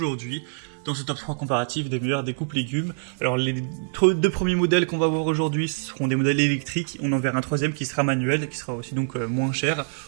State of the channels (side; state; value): left; silent; 62 dB below the other